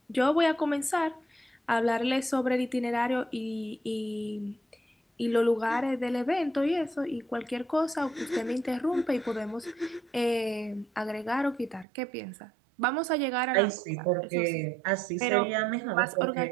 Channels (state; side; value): drops out; left; at 11.9 s